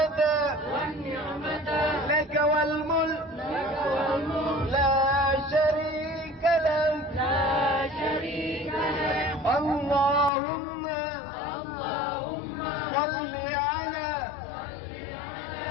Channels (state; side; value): drops out; right; at 10.3 s